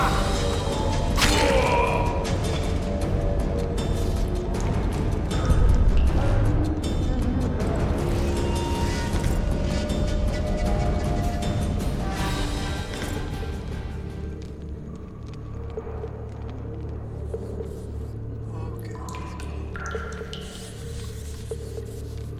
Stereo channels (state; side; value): identical; both; correlation 1.00